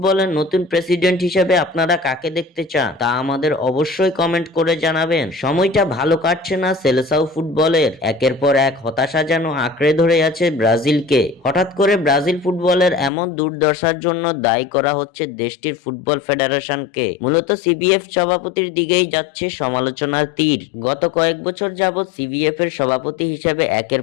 নতুন প্রেসিডেন্ট হিসেবে আপনারা কাকে দেখতে চান তা আমাদের অবশ্যই কমেন্ট করে জানাবেন। সময়টা ভালো কাটছে না সেলেসাও ফুটবলের। একের পর এক হতাশা যেন আঁকড়ে ধরে আছে ব্রাজিলকে। হঠাৎ করে ব্রাজিল ফুটবলের এমন দুর্দশার জন্য দায়ী করা হচ্ছে দেশটির ফুটবল ফেডারেশনকে। মূলত সিবিএফ সভাপতির দিকেই যাচ্ছে সমালোচনার তীর। গত কয়েক বছর যাবৎ সিবিএফ এর সভাপতি হিসেবে একের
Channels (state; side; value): drops out; right; at 13.1 s